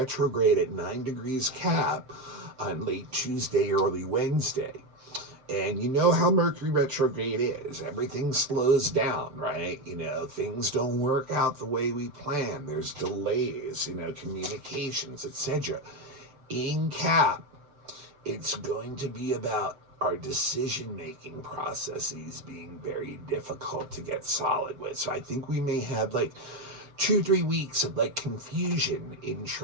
at 9 degrees Cap on late Tuesday, early Wednesday. And you know how Mercury retrograde is. Everything slows down, right? Things don't work out the way we plan. There's delays, communications, etc. In Cap, it's going to be about our decision-making processes being very difficult to get solid with. So I think we may have 2-3 weeks of confusion in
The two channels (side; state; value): left; late; 6.9 ms